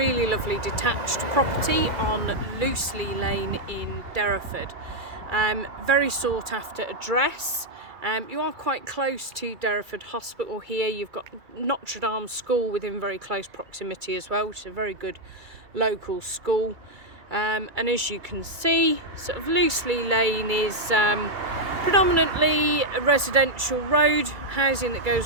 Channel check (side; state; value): left; late; 2.3 ms